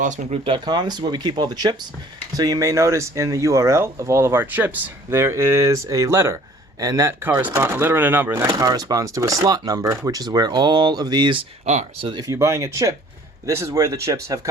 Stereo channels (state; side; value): normal; both; correlation 0.53